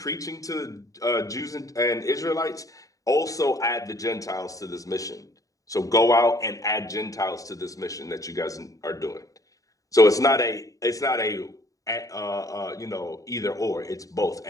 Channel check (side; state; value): right; late; 0.16 ms